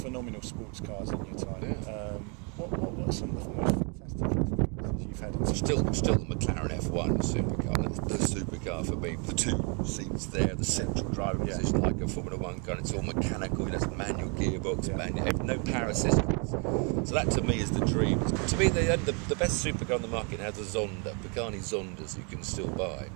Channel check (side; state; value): left; quieter; 35.5 dB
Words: phenomenal sports cars in your time. What are some of the most fantastic experiences you've had? Still the McLaren F1 supercar. That's the supercar for me. The 2 seats there, the central driving position like a Formula 1 car. It's all mechanical. It's manual gearbox, no power assistance. So that to me is the dream. To me, the best supercar on the market now is the Zonda, Pagani Zondas you can still buy.